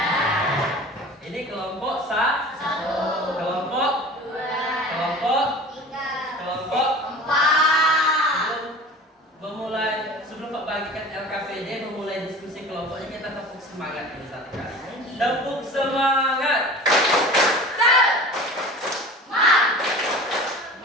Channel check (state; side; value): normal; both; correlation 0.39